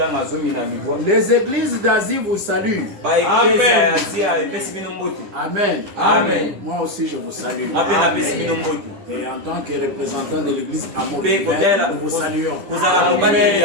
Les églises d'Asie vous saluent. Amen. Amen. Amen. Moi aussi je vous salue. Amen. Et en tant que représentant de l'église Amour Divin, nous vous saluons.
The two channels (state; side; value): late; left; 10 ms